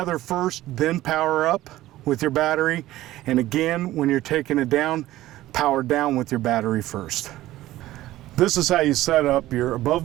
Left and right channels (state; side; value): quieter; left; 15.6 dB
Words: first, then power up with your battery. And again, when you're taking it down, power down with your battery first. This is how you set up your